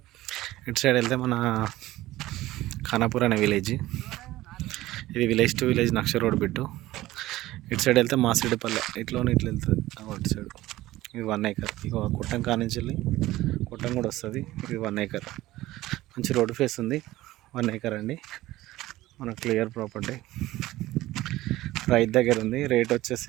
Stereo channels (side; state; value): left; quieter; 16.7 dB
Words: ఇటు సైడ్ వెళ్తే మన ఖానాపూర్ అనే విలేజ్. ఇది విలేజ్ టు విలేజ్ నక్ష రోడ్ బిట్టు. ఇటు సైడ్ వెళ్తే మాసిడిపల్లె ఇట్లా వెళ్తుంది. అటు సైడ్ ఇది 1 acre. ఇక కుట్టం కానించి వెళ్ళి కుట్టం కూడా వస్తుంది. ఇది 1 acre. మంచి రోడ్ ఫేస్ ఉంది. 1 acre అండి. మన క్లియర్ ప్రాపర్టీ రైతు దగ్గర ఉంది. రేట్